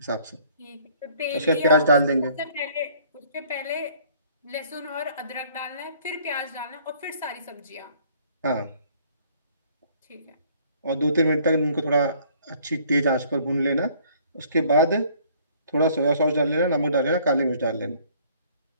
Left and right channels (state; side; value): inverted; both; correlation -0.58